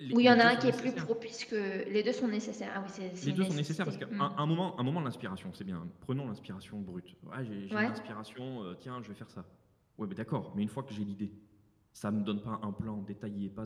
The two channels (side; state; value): both; identical; correlation 1.00